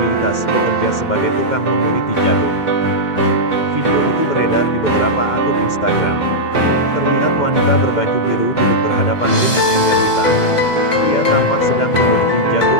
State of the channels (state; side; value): late; right; 2.1 ms